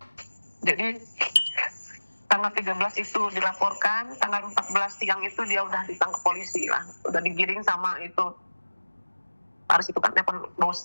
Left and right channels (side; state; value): both; inverted; correlation -1.00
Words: Jadi tanggal 13 itu dilaporkan, tanggal 14 siang itu dia udah ditangkap polisi lah, udah digiring sama itu harus itu kan telepon